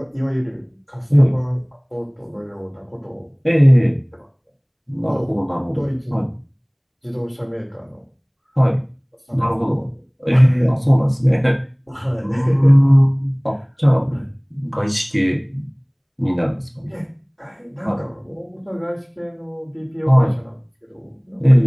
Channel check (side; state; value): both; identical; correlation 1.00